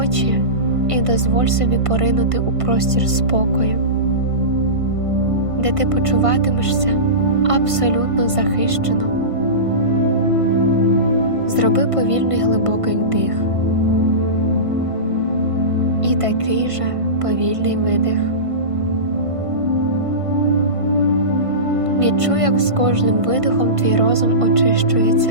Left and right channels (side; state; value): left; late; 1.5 ms